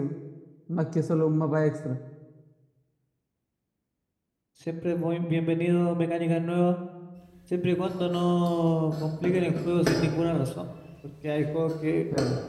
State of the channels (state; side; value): identical; both; correlation 1.00